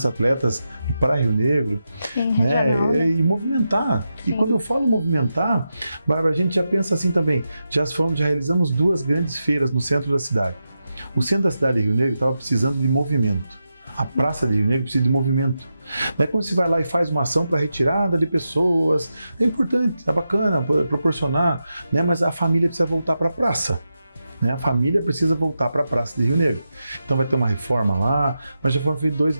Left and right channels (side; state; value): both; inverted; correlation -0.88